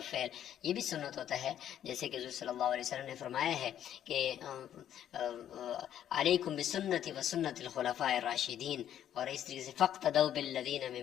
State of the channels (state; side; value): quieter; right; 10.6 dB